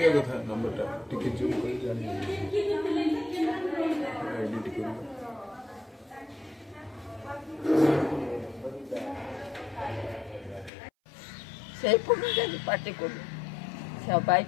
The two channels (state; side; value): drops out; right; at 10.7 s